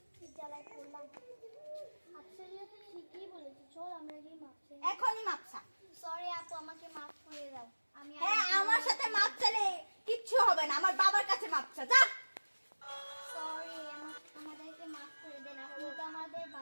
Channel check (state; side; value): inverted; both; correlation -1.00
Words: জ্বালায় পড়লাম। আপসরিয়া তো ঠিকই বলেছে, চল আমরা গিয়ে মাপ চাই। এখনই মাপচা। সরি আপু, আমাকে মাফ করে দাও। আমি হ্যাঁ আমার সাথে মাপ চালে কিচ্ছু হবে না, আমার বাবার কাছে মাপচা, যা। সরি, আমাদেরকে মাফ করে দেন। আপনি তো আমাদের